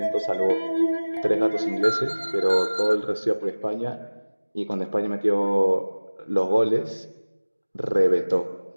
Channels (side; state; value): both; inverted; correlation -1.00